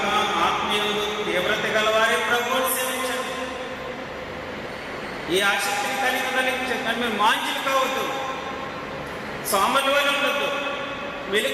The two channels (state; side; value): identical; both; correlation 1.00